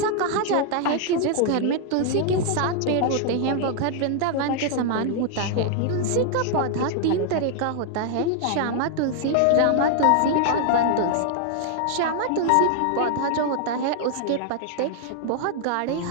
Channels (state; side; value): different; both; correlation 0.00